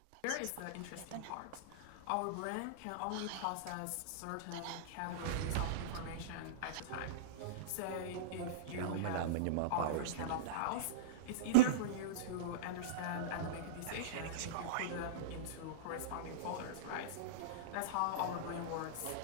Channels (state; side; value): different; both; correlation -0.04